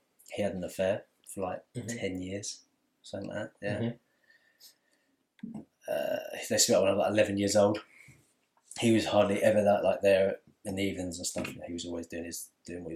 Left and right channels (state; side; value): identical; both; correlation 1.00